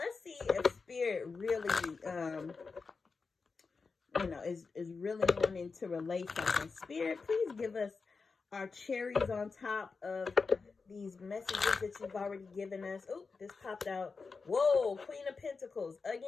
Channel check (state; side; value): quieter; right; 4.6 dB